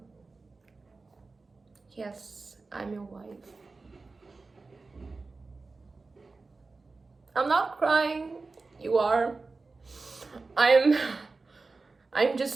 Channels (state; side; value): quieter; left; 3.8 dB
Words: Yes, I'm your wife. I'm not crying. You are. I'm